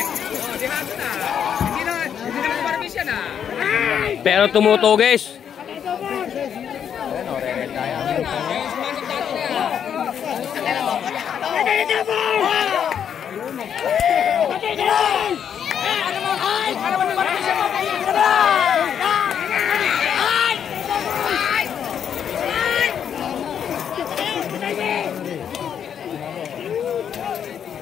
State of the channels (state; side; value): quieter; right; 8.4 dB